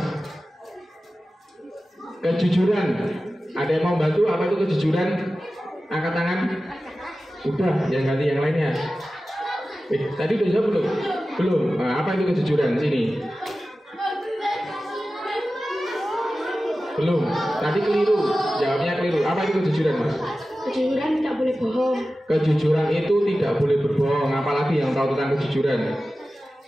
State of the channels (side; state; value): both; normal; correlation 0.95